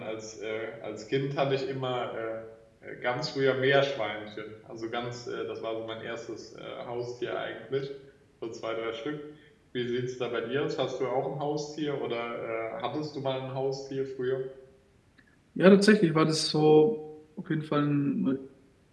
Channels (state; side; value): identical; both; correlation 1.00